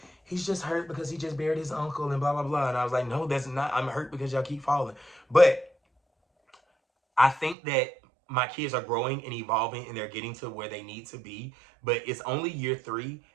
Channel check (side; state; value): left; drops out; at 7.6 s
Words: he's just hurt because he just buried his uncle and blah, blah, blah. And I was like, no, that's not. I'm hurt because y'all keep falling. But I think that my kids are growing and evolving and they're getting to where they need to be. But it's only year 3.